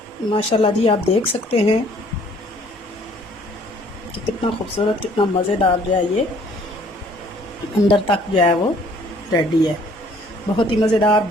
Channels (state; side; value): normal; both; correlation 0.59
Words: माशाल्लाह जी, आप देख सकते हैं कि कितना खूबसूरत, कितना मज़ेदार जो है ये अंदर तक जो है वो रेडी है। बहुत ही मज़ेदार,